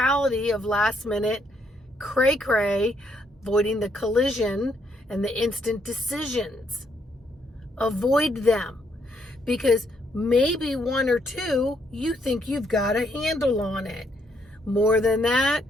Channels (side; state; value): both; normal; correlation 0.73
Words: of last minute cray-cray, avoiding the collision and the instant decisions. Avoid them, because maybe one or two, you think you've got a handle on it. More than that,